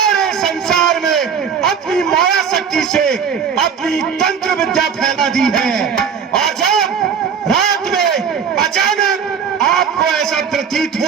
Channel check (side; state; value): left; quieter; 6.9 dB